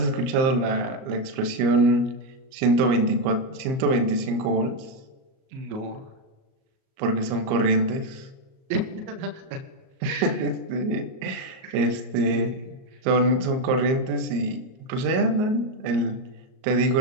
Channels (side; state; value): left; late; 38 ms